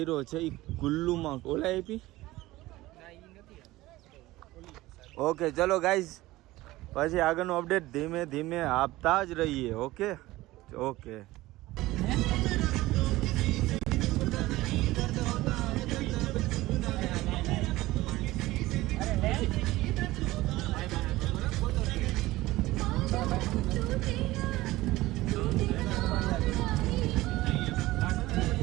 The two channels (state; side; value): quieter; left; 18.1 dB